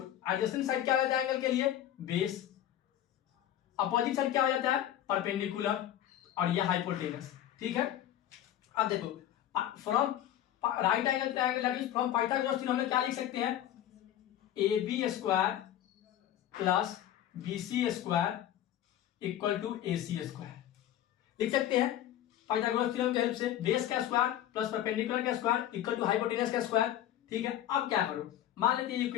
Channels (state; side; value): quieter; right; 11.9 dB